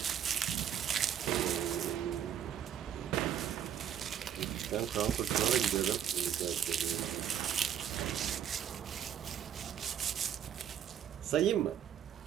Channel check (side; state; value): left; quieter; 9.5 dB